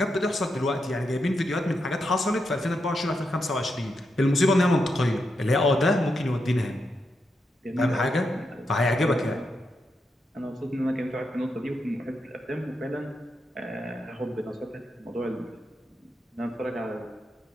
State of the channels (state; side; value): normal; both; correlation 0.84